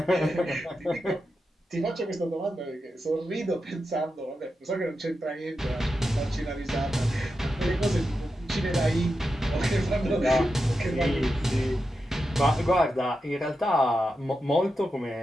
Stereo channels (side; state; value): both; normal; correlation 0.89